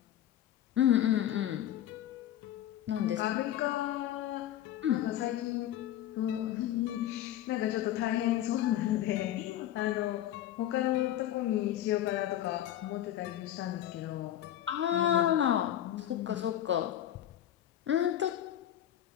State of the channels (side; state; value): right; quieter; 12.0 dB